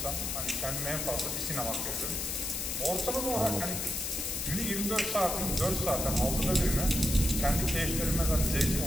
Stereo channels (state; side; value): noise; left; hiss, 2 dB below the sound